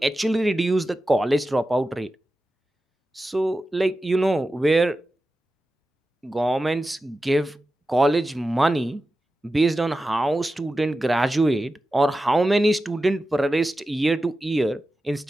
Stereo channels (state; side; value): normal; both; correlation 0.93